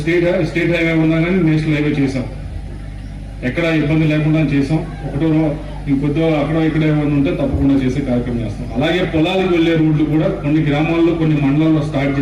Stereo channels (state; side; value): identical; both; correlation 1.00